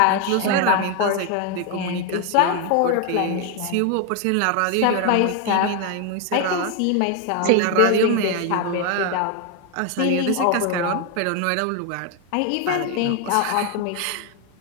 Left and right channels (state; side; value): different; both; correlation 0.01